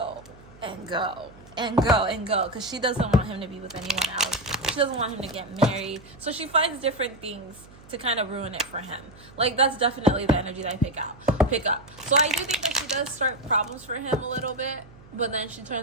and go and go and go, because she doesn't want him to be with anyone else. She doesn't want him to get married, so she finds different things to kind of ruin it for him. Like, that's definitely the energy that I pick up. So I do think that she does start problems for him a little bit, But then she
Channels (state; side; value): noise; right; hum, 22 dB below the sound